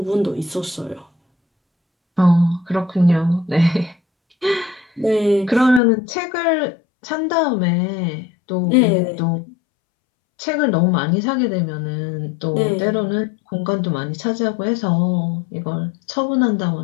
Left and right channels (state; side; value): drops out; right; at 5.8 s